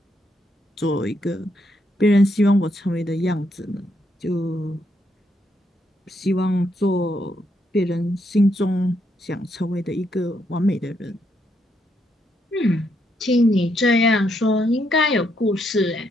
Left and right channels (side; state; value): both; normal; correlation 0.77